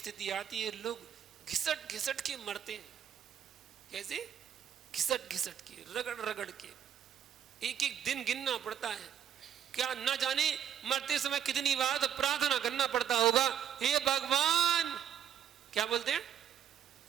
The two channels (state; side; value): quieter; left; 9.3 dB